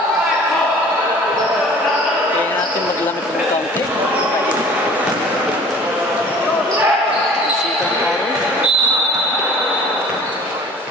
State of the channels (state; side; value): normal; both; correlation 0.47